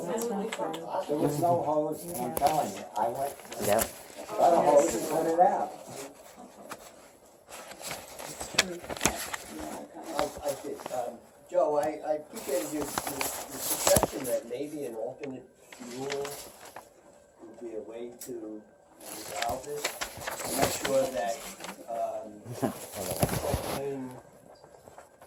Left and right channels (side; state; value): both; identical; correlation 1.00